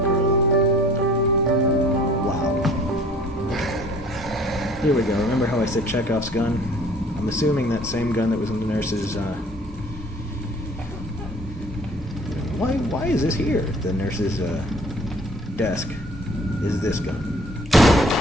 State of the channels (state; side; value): normal; both; correlation 0.52